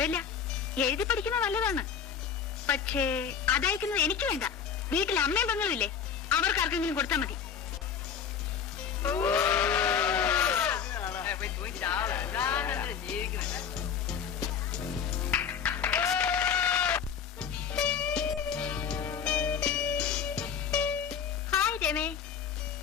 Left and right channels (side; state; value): right; quieter; 7.4 dB